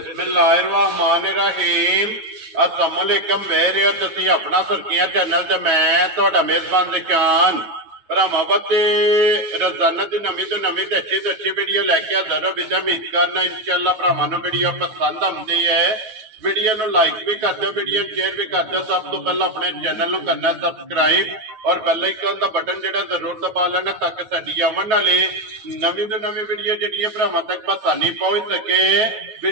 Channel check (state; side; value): late; left; 9.2 ms